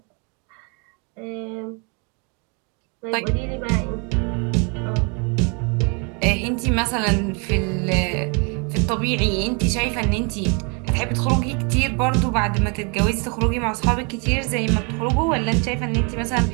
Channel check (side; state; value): left; quieter; 34.1 dB